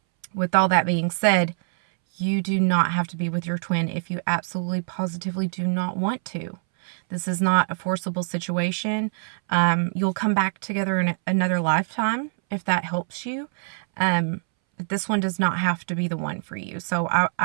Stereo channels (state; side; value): silent; left; 62 dB below the other